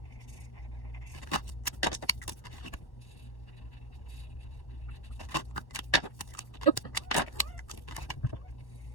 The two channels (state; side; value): late; right; 1.2 ms